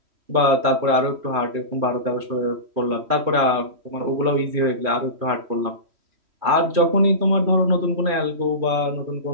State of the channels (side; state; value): left; late; 3.1 ms